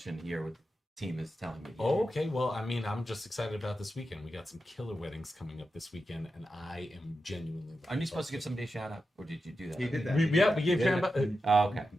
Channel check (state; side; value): normal; both; correlation 0.90